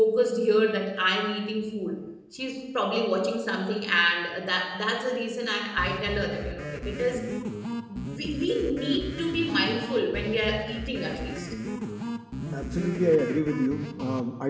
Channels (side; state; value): both; identical; correlation 1.00